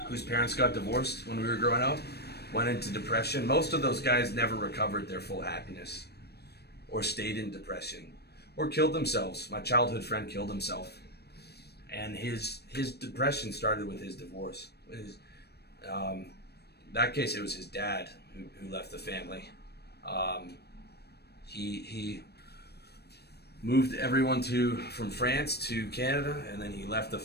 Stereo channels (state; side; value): late; right; 0.47 ms